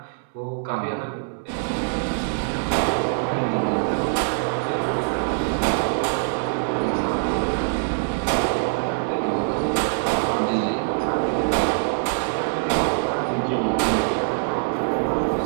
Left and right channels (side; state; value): left; silent; digital silence